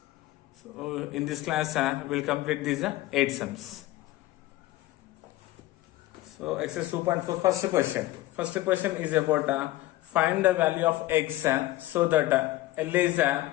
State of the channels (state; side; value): quieter; right; 16.6 dB